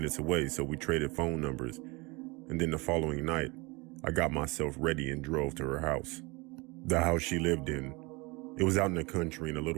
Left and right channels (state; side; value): quieter; left; 26.2 dB